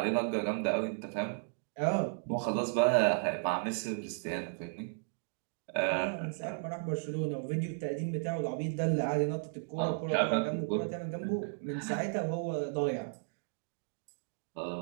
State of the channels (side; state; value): left; silent; digital silence